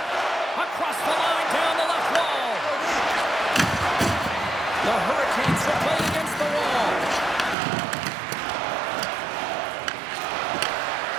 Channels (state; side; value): drops out; left; at 7.6 s